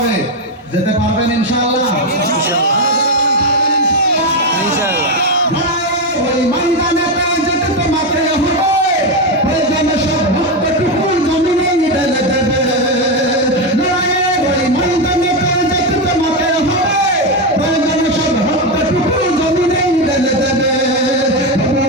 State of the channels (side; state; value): both; normal; correlation 0.09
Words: যেতে পারবেন ইনশাআল্লাহ? ওই ময়দানেতে যেতে তোমাকে হবে, প্রয়োজনে সব রক্তটুকু জমিনে ঢেলে দেবে। ওই ময়দানেতে যেতে তোমাকে হবে, প্রয়োজনে সব রক্তটুকু জমিনে ঢেলে দেবে।